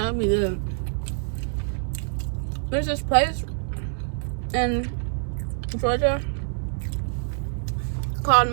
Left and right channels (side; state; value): left; silent; digital silence